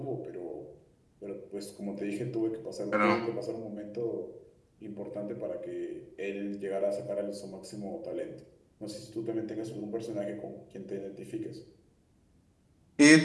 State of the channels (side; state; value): both; identical; correlation 1.00